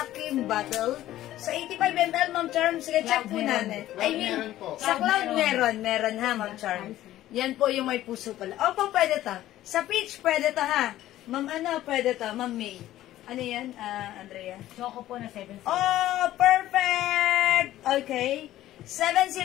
bottle. Sa 85 ml, Ma'am Charm, sige, check po natin. I mean, sa Cloud meron ha, Ma'am Charm. Yan po yung may puso pala. Opo, pwede to. Sa Peach, pwede to ha. Ma'am, ano, pwede to. Ma'am May. Ano yan, Andrea? Choco po na 70. Oh, perfect! Okay.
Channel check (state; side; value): quieter; right; 14.1 dB